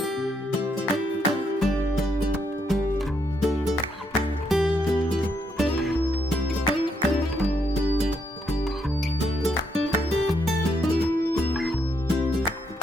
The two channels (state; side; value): normal; both; correlation 0.76